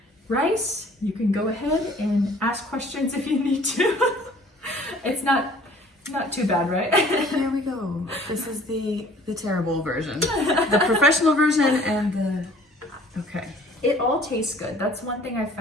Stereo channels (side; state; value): both; normal; correlation 0.52